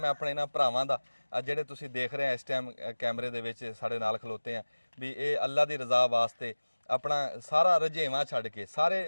ਆਪਣੇ ਇਹਨਾਂ ਭਰਾਵਾਂ ਦਾ, ਜਿਹੜੇ ਤੁਸੀਂ ਦੇਖ ਰਹੇ ਆ ਇਸ ਟਾਈਮ ਕੈਮਰੇ ਦੇ ਵਿੱਚ ਸਾਡੇ ਨਾਲ ਖਲੋਤੇ ਆ, ਵੀ ਇਹ ਅੱਲਾ ਦੀ ਰਜ਼ਾ ਵਾਸਤੇ ਆਪਣਾ ਸਾਰਾ ਰਜੇਵਾਂ ਛੱਡ ਕੇ,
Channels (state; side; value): inverted; both; correlation -1.00